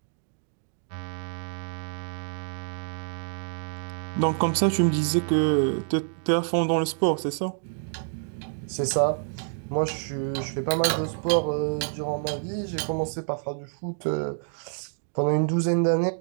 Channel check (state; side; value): silent; left; digital silence